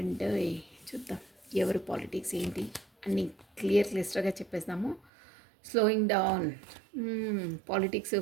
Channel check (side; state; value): left; drops out; at 5.1 s